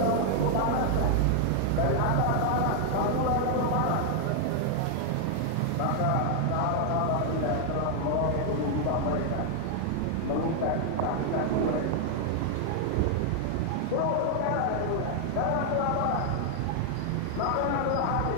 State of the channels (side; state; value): both; different; correlation 0.00